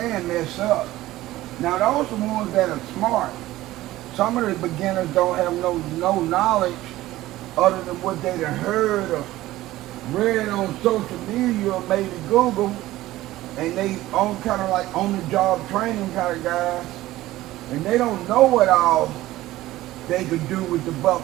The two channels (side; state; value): left; quieter; 16.3 dB